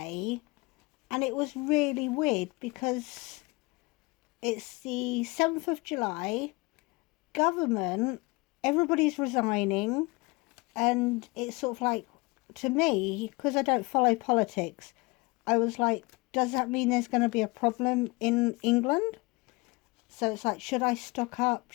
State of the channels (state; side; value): quieter; right; 25.0 dB